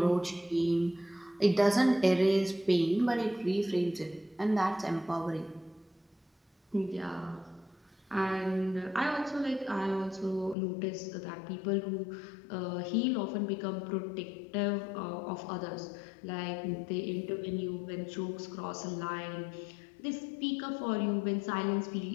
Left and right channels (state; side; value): drops out; right; at 10.6 s